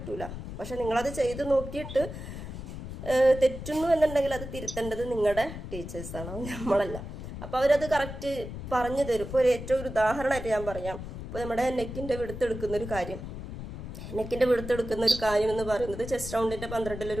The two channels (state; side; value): noise; left; rumble, 9 dB below the sound